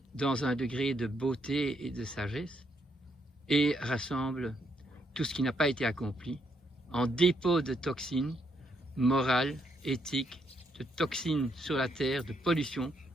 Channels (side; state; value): both; normal; correlation 0.75